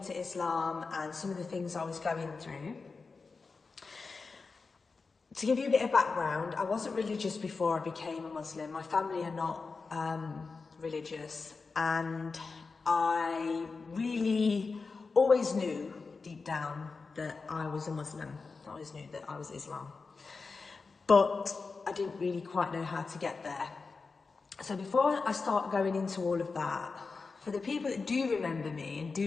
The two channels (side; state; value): right; quieter; 4.4 dB